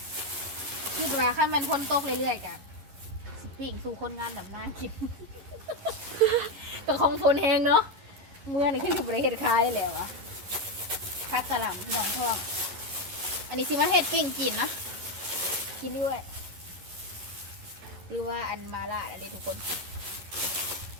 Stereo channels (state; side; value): late; left; 11 ms